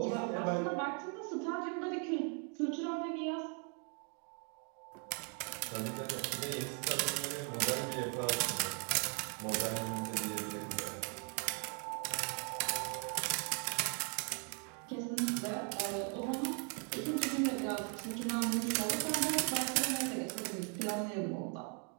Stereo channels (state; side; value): quieter; left; 39.7 dB